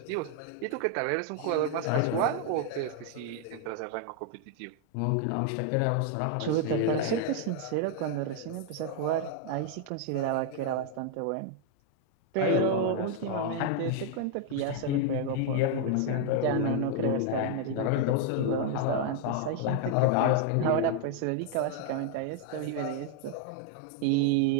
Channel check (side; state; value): both; different; correlation 0.00